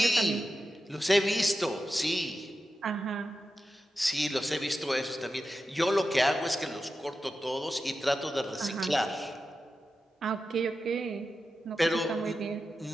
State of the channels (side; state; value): both; normal; correlation 0.91